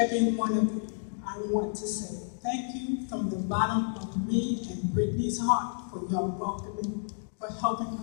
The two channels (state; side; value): silent; right; 57 dB below the other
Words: one of you, I want to say thank you from the bottom of me and Brittany's heart for your welcoming, for helping